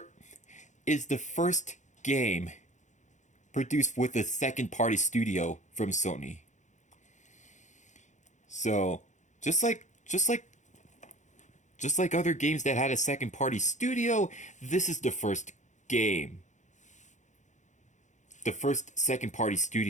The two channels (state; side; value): late; right; 0.35 ms